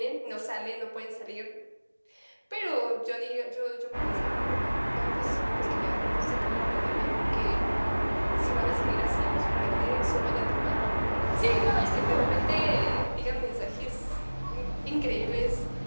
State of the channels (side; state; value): both; inverted; correlation -1.00